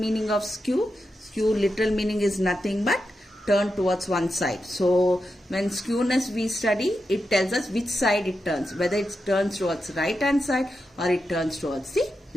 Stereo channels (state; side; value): normal; both; correlation 0.88